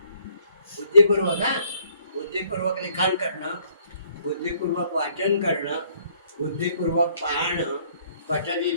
बुद्धिपूर्वक बुद्धिपूर्वक लिखाण करणं, बुद्धिपूर्वक वाचन करणं, बुद्धिपूर्वक पाहणं. पठती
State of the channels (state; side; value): inverted; both; correlation -0.64